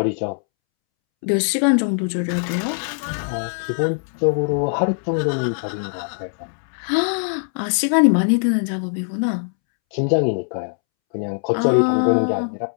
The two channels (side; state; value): right; silent; 65 dB below the other